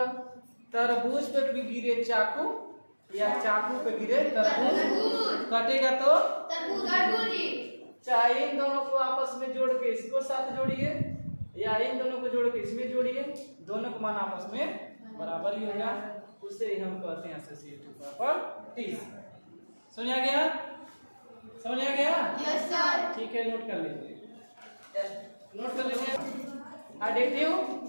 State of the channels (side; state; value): both; inverted; correlation -1.00